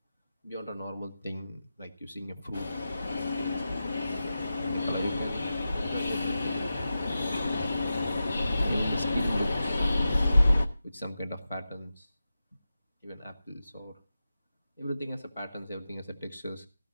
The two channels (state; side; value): inverted; both; correlation -0.91